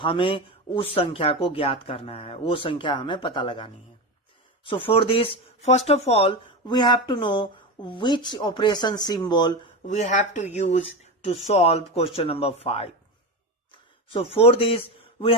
उस संख्या को ज्ञात करना है, वो संख्या हमें पता लगानी है। So for this, first of all, we have to know which operation symbol we have to use to solve question number 5. So for this, we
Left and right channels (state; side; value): normal; both; correlation 0.20